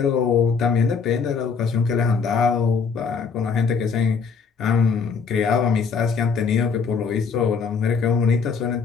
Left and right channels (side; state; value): right; quieter; 5.6 dB